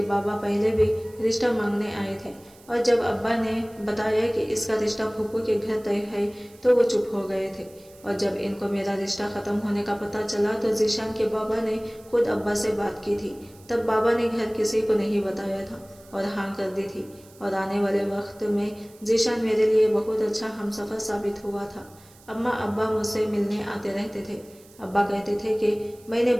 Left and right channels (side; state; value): right; noise; hiss, 26 dB below the sound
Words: بابا پہلے بھی رشتہ مانگنے آئے تھے، اور جب ابا نے بتایا کہ اس کا رشتہ پھوپھو کے گھر طے ہے تو وہ چپ ہو گئے تھے، اور جب ان کو میرا رشتہ ختم ہونے کا پتہ چلا تو ذیشان کے بابا نے خود ابا سے بات کی تھی۔ تب بابا نے گھر کسی کو نہیں بتایا تھا اور ہاں کر دی تھی، اور آنے والے وقت میں ذیشان میرے لیے بہت اچھا ہمسفر ثابت ہوا تھا۔ اماں ابا مجھ سے ملنے آتے رہتے تھے۔ ابا کہتے تھے کہ میں نے